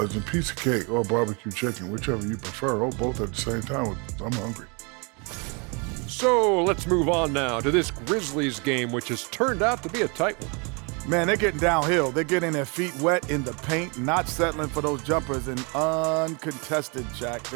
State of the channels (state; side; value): quieter; left; 32.2 dB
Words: Piece of cake or barbecue chicken, whichever you prefer, or both at the same time. I'm hungry. So let's move on now to this Grizzlies game, which has turned out to be a tight one. Man, they're getting downhill. They're getting their feet wet in the paint, not settling for those jumpers, and uncontested, Jack.